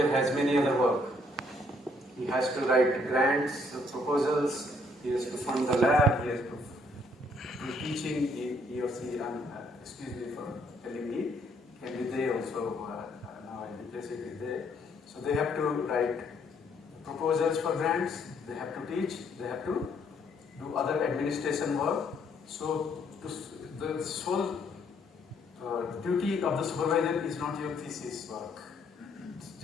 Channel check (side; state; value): both; normal; correlation 0.68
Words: has many other work. He has to write grants, proposals, he has to fund the lab, he has to do teaching, he or she, excuse me for telling me, can be they also, now I replace it with they. So they have to write proposals for grants, they have to teach, they have to do other administration work. So the sole duty of the supervisor is not your thesis work. It's